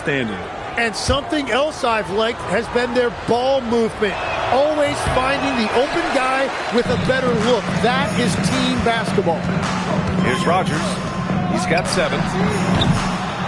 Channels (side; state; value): both; identical; correlation 1.00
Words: And something else I've liked has been their ball movement. Always finding the open guy with a better look. That is team basketball. Here's Rogers. He's got 7.